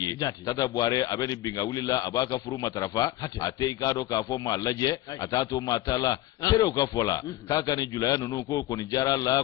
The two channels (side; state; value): right; quieter; 15.8 dB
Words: tata buare abeni binga wuli la abaka furu matarafa ate ikado ka fo malaje atato matala sere ka fola kaka ni julaya nunu ko ni jara la